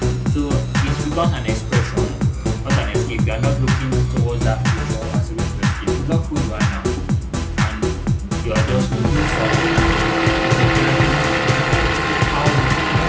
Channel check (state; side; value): identical; both; correlation 1.00